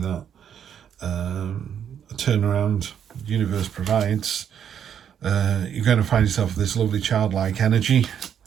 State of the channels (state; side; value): quieter; left; 8.7 dB